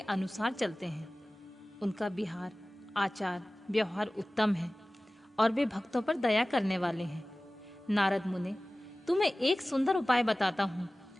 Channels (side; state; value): both; normal; correlation 0.98